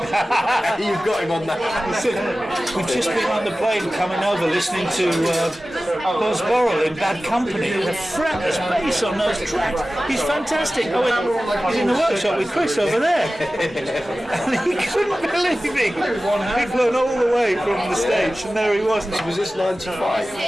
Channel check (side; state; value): both; normal; correlation 0.96